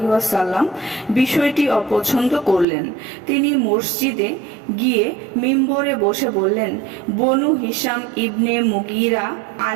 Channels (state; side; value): drops out; left; at 2.7 s